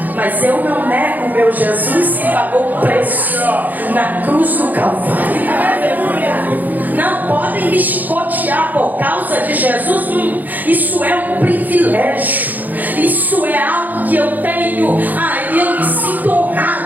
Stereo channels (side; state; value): left; late; 0.083 ms